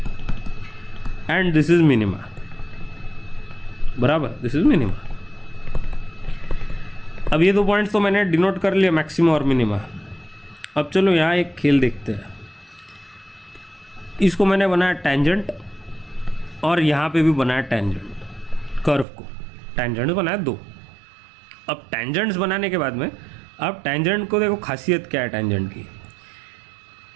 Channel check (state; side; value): drops out; left; at 19.1 s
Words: and this is minima, बराबर, दिस इज मिनिमा। अब ये दो पॉइंट्स तो मैंने डिनोट कर लिया, मैक्सिमा और मिनिमा। अब चलो यहाँ एक खेल देखते हैं। इसको मैंने बनाया टेंजेंट और यहाँ पे भी बनाया टेंजेंट, कर्व को टेंजेंट बनाया दो। अब टेंजेंट्स बनाने के बाद में, अब टेंजेंट को देखो खासियत क्या है टेंजेंट की,